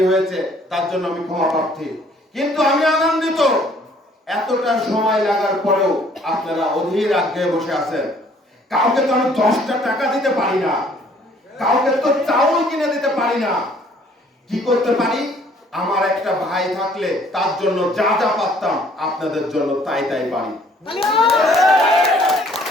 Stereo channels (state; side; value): normal; both; correlation 0.59